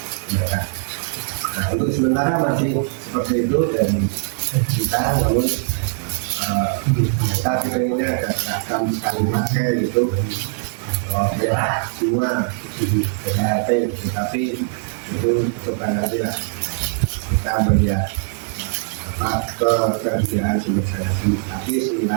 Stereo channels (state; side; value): silent; left; digital silence